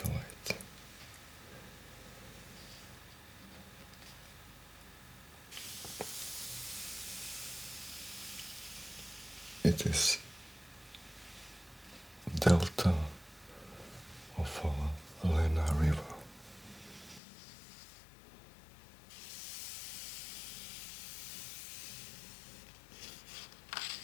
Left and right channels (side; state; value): right; drops out; at 17.2 s